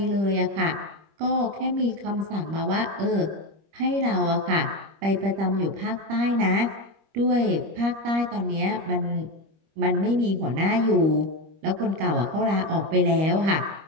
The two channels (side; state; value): left; late; 25 ms